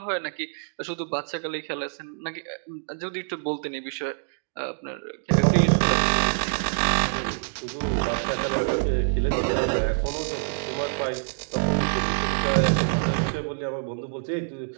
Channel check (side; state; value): left; silent; digital silence